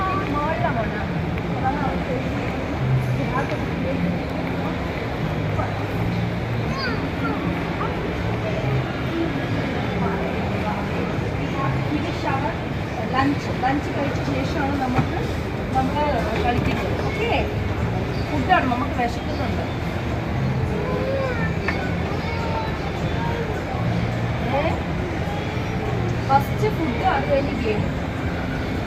അത് കഴിഞ്ഞ് ഗെയിം.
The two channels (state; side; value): identical; both; correlation 1.00